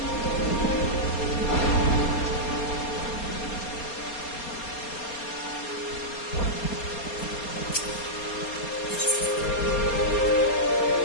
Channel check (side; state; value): right; late; 4.3 ms